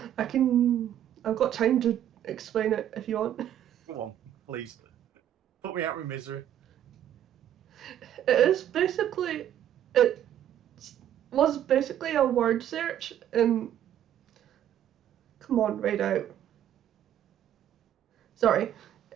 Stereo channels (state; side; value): quieter; left; 10.9 dB